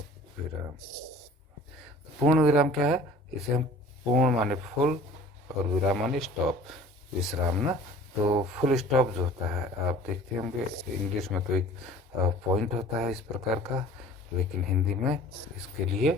विराम, पूर्ण विराम क्या है, इसे हम पूर्ण माने फुल और विराम माने स्टॉप, विश्राम ना। तो फुल स्टॉप जो होता है आप देखते होंगे, इंग्लिश में तो एक पॉइंट होता है इस प्रकार का, लेकिन हिंदी में इसके लिए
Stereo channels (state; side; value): normal; both; correlation 0.46